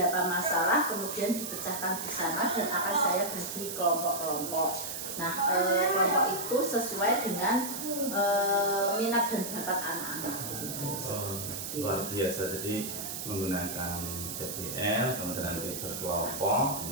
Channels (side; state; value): right; noise; hiss, 6 dB below the sound